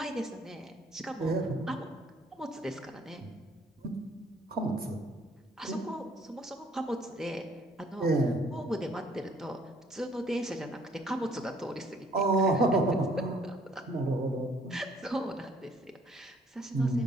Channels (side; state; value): both; normal; correlation 0.61